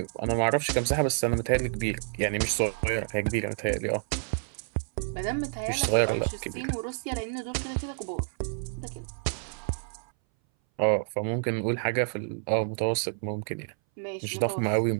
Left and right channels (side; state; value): left; silent; 59 dB below the other